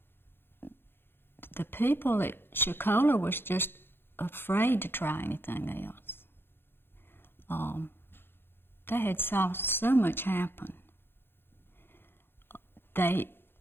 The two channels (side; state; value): right; late; 0.10 ms